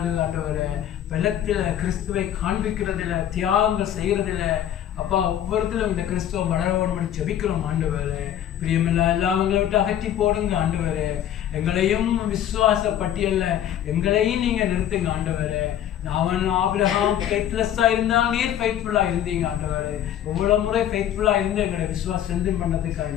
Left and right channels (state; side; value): quieter; right; 10.8 dB